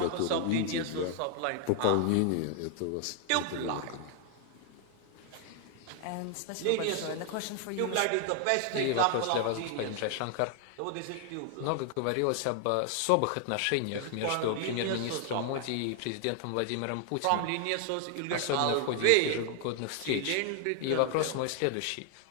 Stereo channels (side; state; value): both; different; correlation 0.00